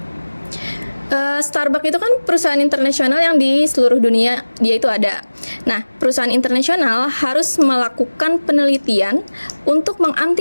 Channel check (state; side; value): inverted; both; correlation -1.00